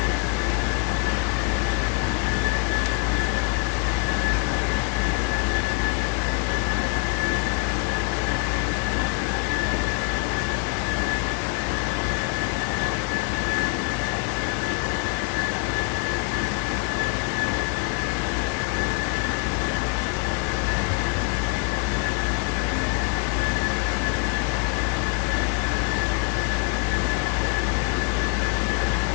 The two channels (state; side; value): quieter; right; 32.8 dB